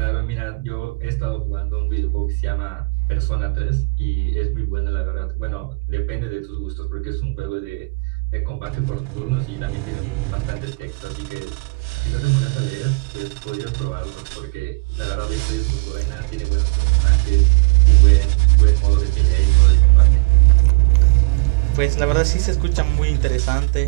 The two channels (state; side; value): quieter; left; 25.6 dB